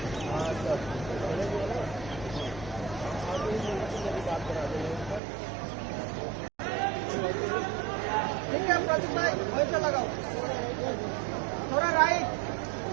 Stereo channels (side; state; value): left; drops out; at 5.2 s